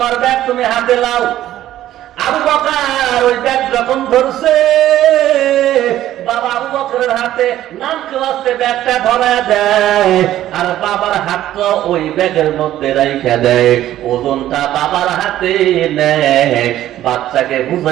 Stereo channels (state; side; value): quieter; left; 13.1 dB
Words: ব্যাগ, তুমি হাতে লাও। আবু বকর ওই ব্যাগ যখন ধরছে, বাবা আবু বকরের হাতে নাম ক্লাসে ব্যাগটা ধরায় দেয়, আর বাবার হাতটা ওই ব্যাগের মধ্যে রাইখা দেয়। ওজনটা বাবার হাতে নেয়, বাচ্চাকে